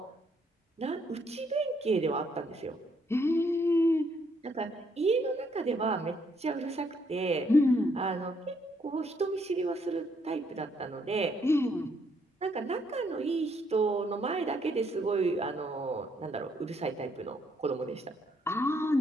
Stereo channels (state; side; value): normal; both; correlation 0.71